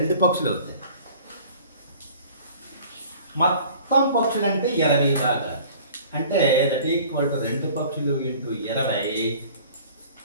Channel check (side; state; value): both; inverted; correlation -0.48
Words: పక్షులు అవుతాయి. మొత్తం పక్షులు అంటే 20 భాగాలు. అంటే దట్ ఈక్వల్ టు 2 పక్షులు ఇంటూ 20